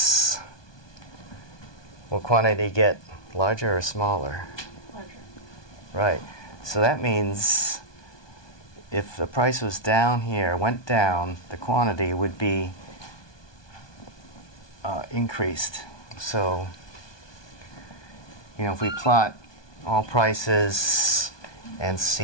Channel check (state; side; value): late; right; 1.2 ms